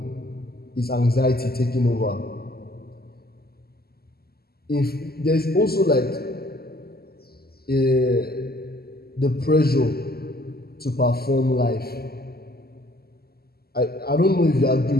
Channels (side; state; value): right; late; 0.45 ms